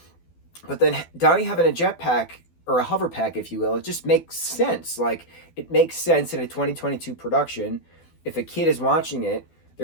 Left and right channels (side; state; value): right; late; 12 ms